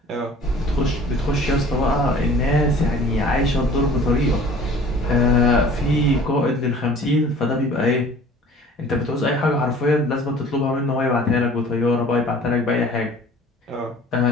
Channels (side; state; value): both; normal; correlation 0.48